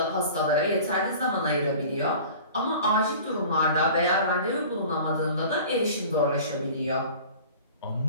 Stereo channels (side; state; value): both; inverted; correlation -0.42